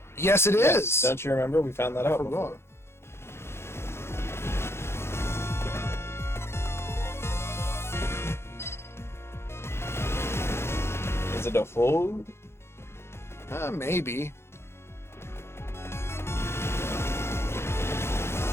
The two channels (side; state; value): right; late; 0.12 ms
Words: Yes, it is. Don't you remember? We found that out before. Is it a hold? Maybe.